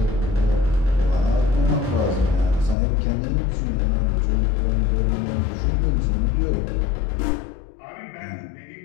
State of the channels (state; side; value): drops out; right; at 2.8 s